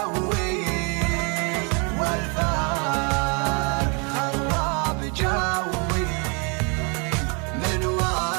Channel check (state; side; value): quieter; left; 34.1 dB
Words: والفرق خرب جوي. من